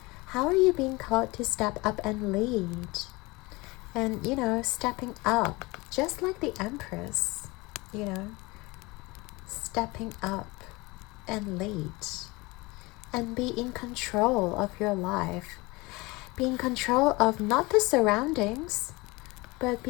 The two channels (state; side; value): quieter; right; 23.7 dB